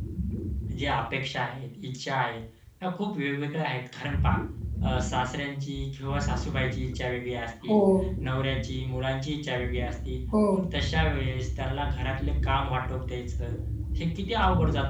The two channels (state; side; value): identical; both; correlation 1.00